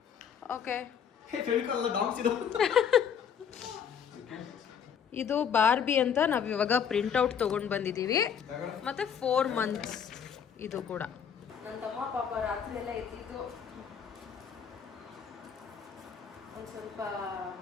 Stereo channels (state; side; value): quieter; right; 7.7 dB